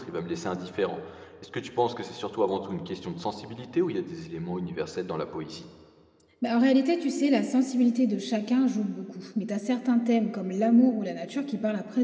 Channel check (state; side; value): identical; both; correlation 1.00